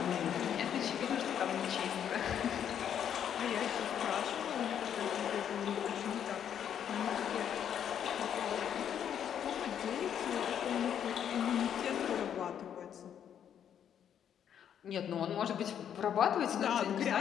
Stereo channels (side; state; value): right; quieter; 9.1 dB